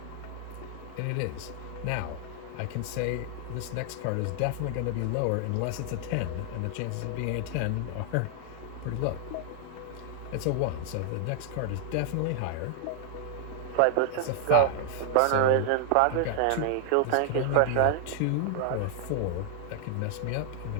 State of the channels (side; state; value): both; different; correlation 0.00